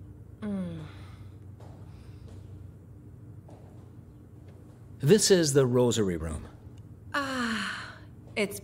This is the rosary room. It's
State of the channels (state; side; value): identical; both; correlation 1.00